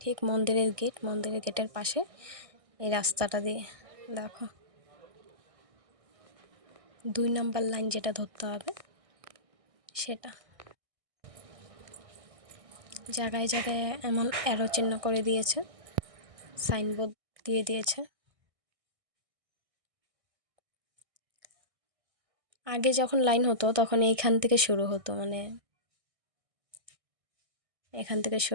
ঠিক মন্দিরের গেটের পাশে এই রাস্তাটা দিয়ে। দেখো 2 নম্বর লাইন যেটা ধরতে হবে সেটা। জায়গায় জায়গায় এমন অ্যারো চিহ্ন করে দিয়েছে, সাইনবোর্ড দিয়ে দিয়েছে। আগে যখন লাইন হতো তখন এইখান থেকে শুরু হতো, মানে এখান থেকে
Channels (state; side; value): late; left; 1.6 ms